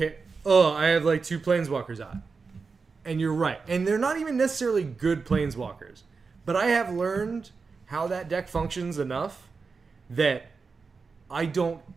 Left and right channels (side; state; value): left; quieter; 4.8 dB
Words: I have like 2 Planeswalkers out. And you're right. And they're not even necessarily good Planeswalkers. But I have learned how that deck functions enough that I don't